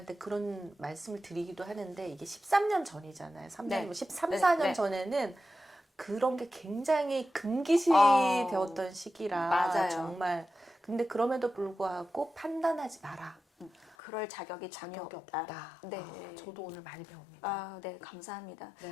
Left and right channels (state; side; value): drops out; right; at 14.0 s